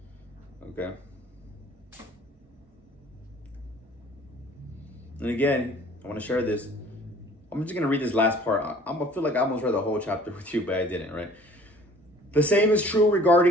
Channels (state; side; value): normal; both; correlation 0.51